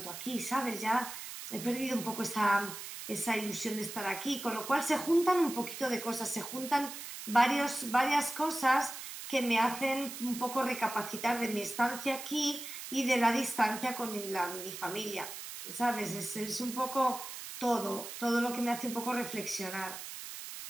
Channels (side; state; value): right; noise; hiss, 9 dB below the sound